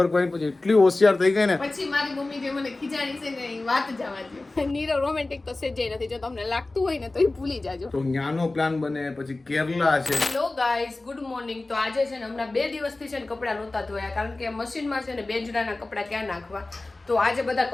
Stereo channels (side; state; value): right; quieter; 3.1 dB